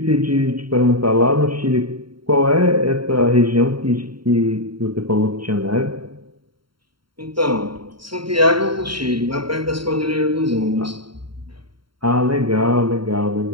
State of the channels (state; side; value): late; left; 0.73 ms